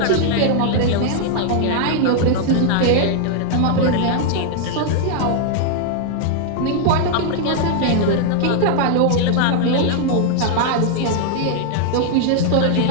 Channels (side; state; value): both; different; correlation 0.00